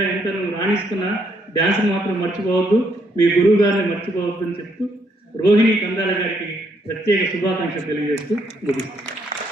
ఎంత నువ్వు రాణిస్తున్నా డ్యాన్స్ని మాత్రం మర్చిపోవద్దు, మీ గురువు గారిని మర్చిపోవద్దు అని చెప్తూ రోహిణి కందాల గారికి ప్రత్యేక శుభాకాంక్షలు తెలియజేస్తూ ముగిస్తాను.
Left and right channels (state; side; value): normal; both; correlation 0.72